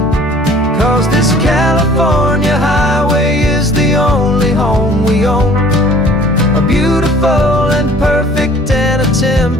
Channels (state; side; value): normal; both; correlation 0.52